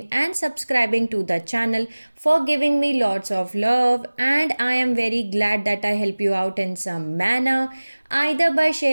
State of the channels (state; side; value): inverted; both; correlation -1.00